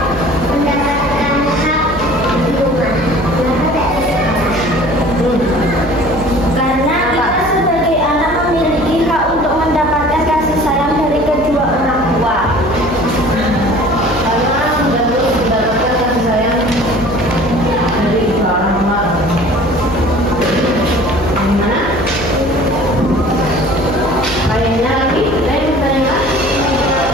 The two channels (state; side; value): noise; right; hum, 13 dB below the sound